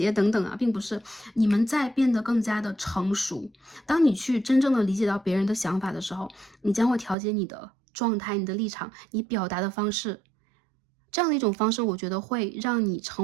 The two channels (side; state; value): left; drops out; at 7.2 s